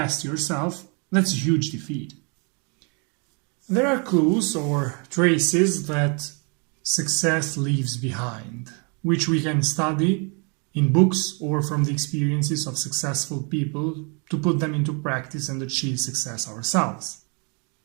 yourself, that's a huge defeat. There are clues or traces that success leaves behind, which we can study in books or from the experiences of successful people to put them into practice and achieve success ourselves.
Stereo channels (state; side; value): quieter; left; 35.3 dB